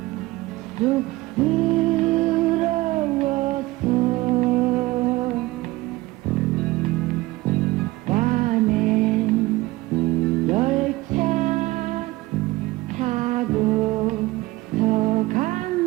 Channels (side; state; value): left; quieter; 19.8 dB